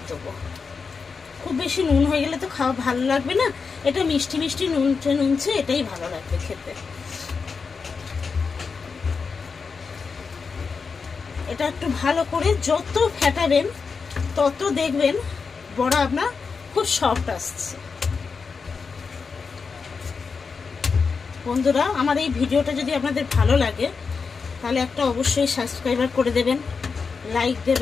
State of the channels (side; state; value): right; quieter; 5.1 dB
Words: দেবো। খুব বেশি নুন হয়ে গেলে তো খাওয়া ভালো লাগবে না, এটা মিষ্টি মিষ্টি নুনছে নুনছে, এটাই ভালো লাগবে খেতে। এটা একটু ভালো করে যত ফেটাবেন তত দেখবেন বড়া আপনার খুব সফট আসছে। বন্ধুরা, আমার এই ভিডিওটা যদি আপনাদের ভালো লাগে তাহলে একটা অবশ্যই সাবস্ক্রাইবার করে দেবেন, লাইক